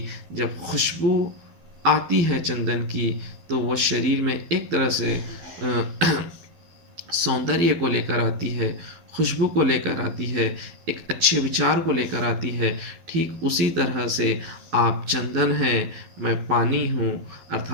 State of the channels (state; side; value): late; left; 12 ms